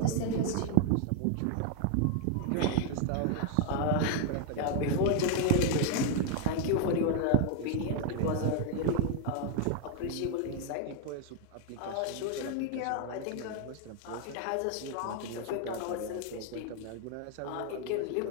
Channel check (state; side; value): different; both; correlation 0.00